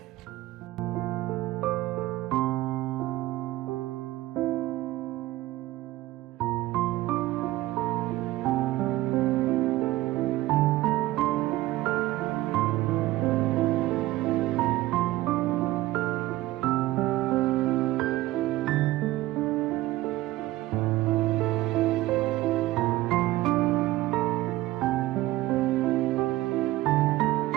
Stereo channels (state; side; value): quieter; left; 17.0 dB